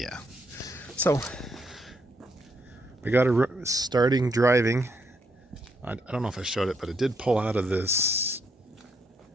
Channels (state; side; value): normal; both; correlation 0.76